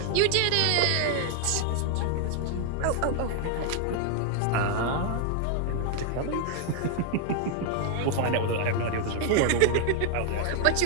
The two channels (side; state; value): both; different; correlation 0.00